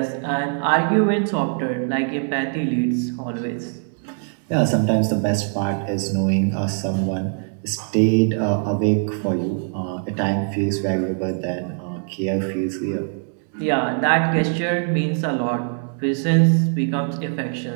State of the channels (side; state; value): left; silent; 58 dB below the other